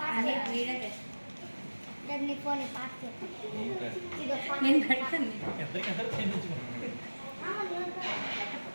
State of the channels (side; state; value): both; inverted; correlation -1.00